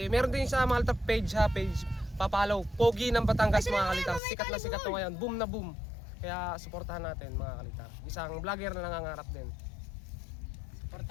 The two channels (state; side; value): drops out; right; at 4.2 s